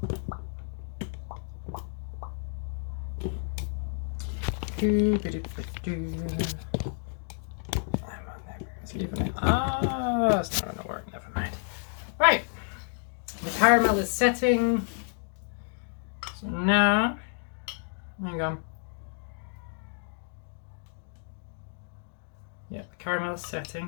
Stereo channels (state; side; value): silent; right; digital silence